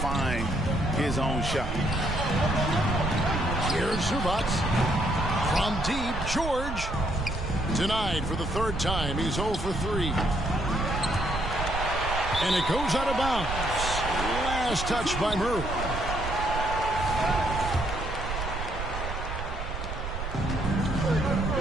his own shot. Here's Zubac. From deep, George. Denied for the third time. He's 0 for 3. And it goes out of bounds. Last touch by Murray.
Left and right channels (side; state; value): right; noise; rumble, 5 dB below the sound